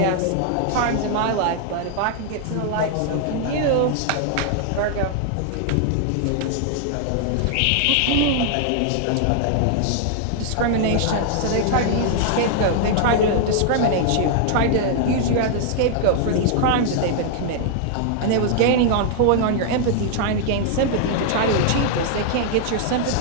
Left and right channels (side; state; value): both; different; correlation 0.00